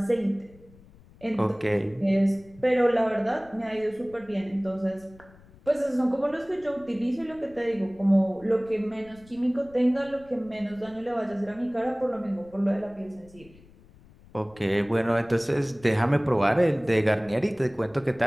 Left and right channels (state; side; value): noise; left; rumble, 25 dB below the sound